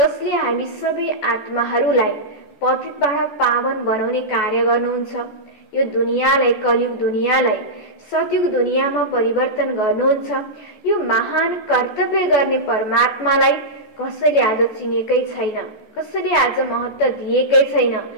हामी सबै आत्माहरूलाई पतितबाट पावन बनाउने कार्य गर्नुहुन्छ। यो दुनियाँलाई, कलियुग दुनियाँलाई सतयुग दुनियाँमा परिवर्तन गर्नुहुन्छ। यो महान कर्तव्य गर्ने परमात्मालाई कसैले आज चिनेकै छैन, कसैले आज महत्त्व दिएकै छैन।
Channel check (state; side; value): late; right; 14 ms